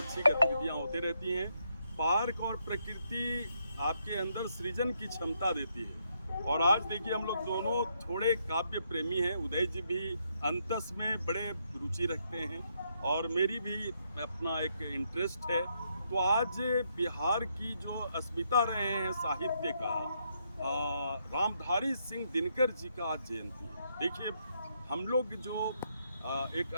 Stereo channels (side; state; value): both; inverted; correlation -0.76